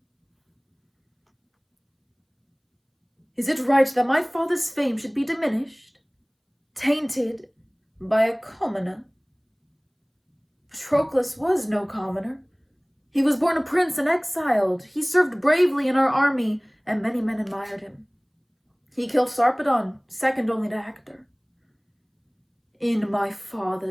Is it right that my father's fame should be diminished, tainted by a commoner? Patroclus was no commoner. He was born a prince and exiled. He served bravely in our army, and many men admired him. He killed Sarpedon, second only to Hector. In my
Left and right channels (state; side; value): identical; both; correlation 1.00